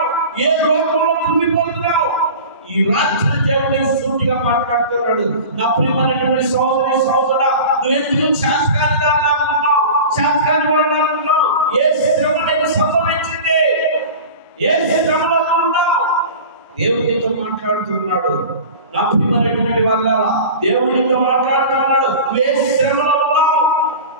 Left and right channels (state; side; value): inverted; both; correlation -0.35